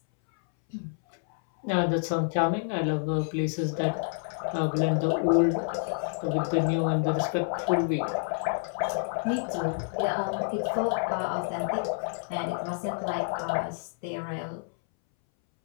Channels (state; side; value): silent; right; 59 dB below the other